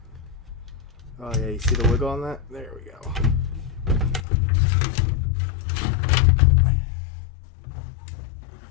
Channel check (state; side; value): drops out; right; at 4.2 s